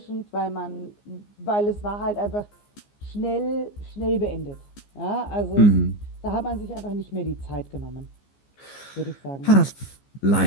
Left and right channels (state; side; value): late; right; 15 ms